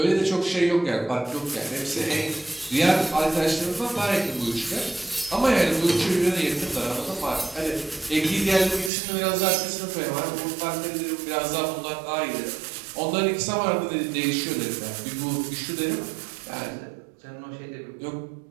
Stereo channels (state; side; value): drops out; left; at 8.9 s